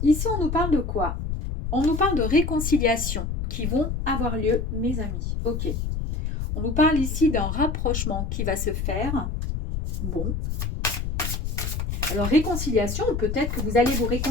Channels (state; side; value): noise; left; rumble, 3 dB below the sound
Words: ici on nous parle de quoi? On nous parle de réconciliation qui vont avoir lieu, mes amis. Ok. On nous parle ici d'un rapprochement qui va se faire. Bon. Alors, réconciliation, peut-être que vous allez vous